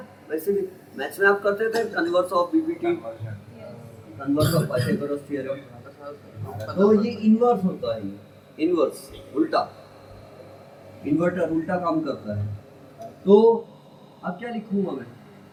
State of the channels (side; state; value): both; identical; correlation 1.00